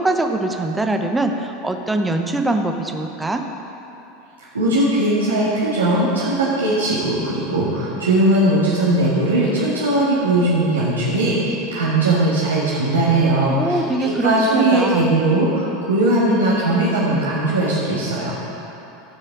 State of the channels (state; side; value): normal; both; correlation 0.17